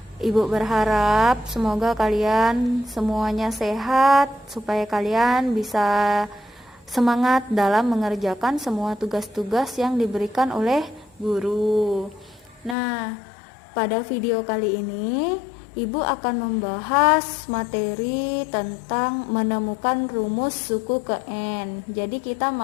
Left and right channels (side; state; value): right; drops out; at 12.8 s